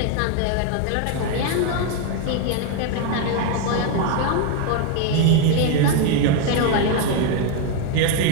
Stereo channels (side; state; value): both; different; correlation 0.01